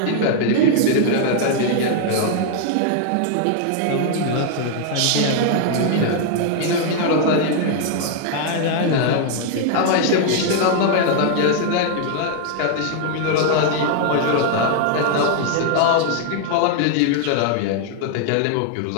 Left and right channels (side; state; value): both; different; correlation 0.00